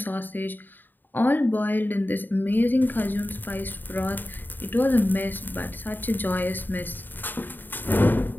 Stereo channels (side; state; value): right; late; 0.091 ms